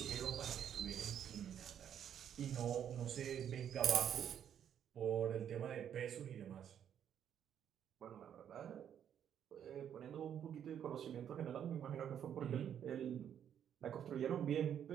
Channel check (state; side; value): quieter; left; 9.2 dB